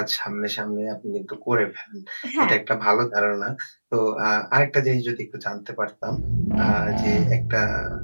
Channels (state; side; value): inverted; both; correlation -1.00